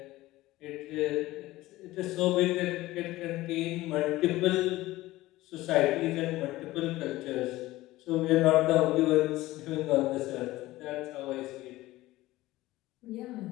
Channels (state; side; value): quieter; right; 17.6 dB